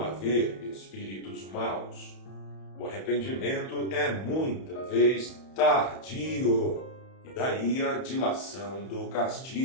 haver espíritos maus. O arrependimento é muita vez tardio, e daí a dilação do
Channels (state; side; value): late; right; 31 ms